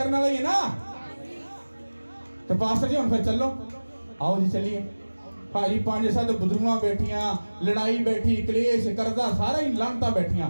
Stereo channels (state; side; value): inverted; both; correlation -1.00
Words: वाला ही है ना। तो पास्टर जी हम फिर चलो, आओ जी चलिए। भाजी 5-7 बुजुर्गां बैठियां, लड़ाई बैठी, कलेश करदा, सारा ही लानता बैठियां,